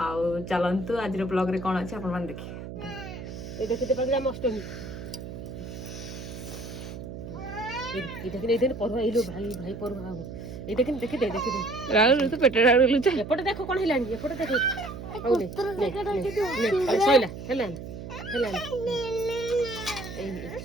चलतु आज ब्लॉग रे कोन अछि आपण मान देखि। ए देखते पागला अष्टमी ए देखते पढ़ो एलो भाई भाई पढ़ो हाओ ए देखते राहुल तू पेट राहुल लुचा एपटे देखो कोन हिलानी एपटे देखो आउले ने सोइला हेलान हेलान ए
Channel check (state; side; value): noise; right; hum, 10 dB below the sound